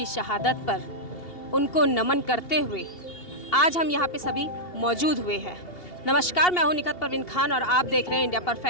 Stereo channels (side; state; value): right; late; 2.8 ms